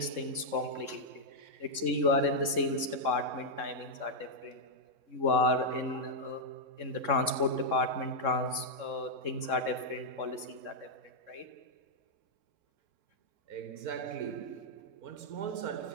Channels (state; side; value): late; left; 3.7 ms